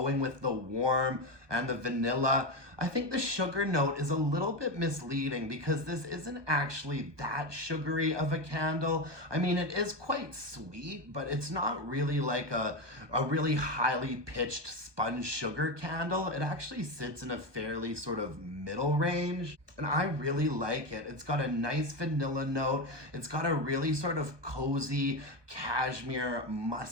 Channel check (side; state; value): left; late; 1.2 ms